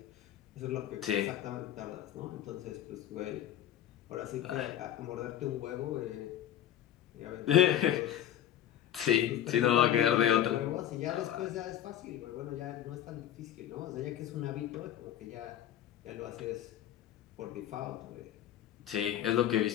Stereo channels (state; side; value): quieter; right; 11.2 dB